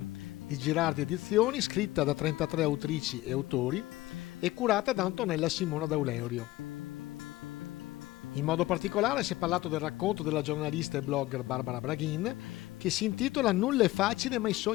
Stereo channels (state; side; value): quieter; right; 17.7 dB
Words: di Girardi Edizioni, scritta da 33 autrici e autori e curata da Antonella Simona D'Auleurio. In modo particolare si è parlato del racconto della giornalista e blogger Barbara Braghin, che si intitola Nulla è facile ma i